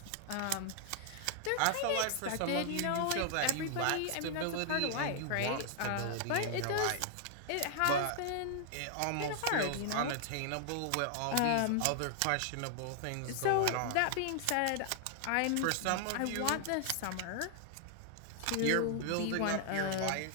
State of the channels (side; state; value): both; different; correlation 0.00